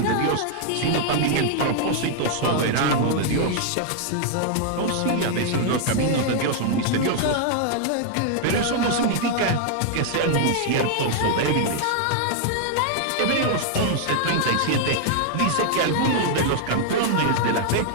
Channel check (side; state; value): both; different; correlation -0.01